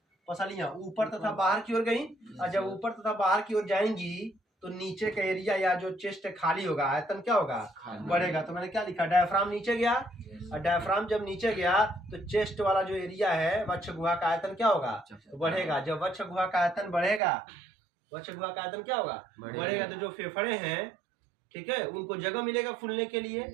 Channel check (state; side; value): drops out; left; at 17.2 s